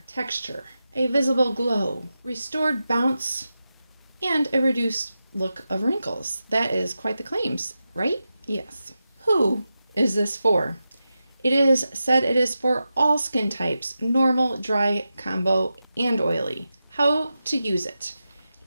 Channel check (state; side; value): inverted; both; correlation -0.91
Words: texture, a visible glow, restored bounce, and a reduced look of wrinkles. That is quite the claims, right? Yes. Who is this for? It is said it is for all skin types, normal, dry, combo, and oily. How to use it?